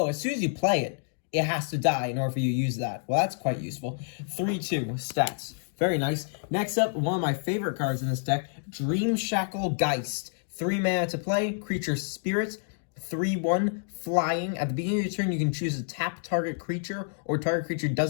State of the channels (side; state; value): right; silent; digital silence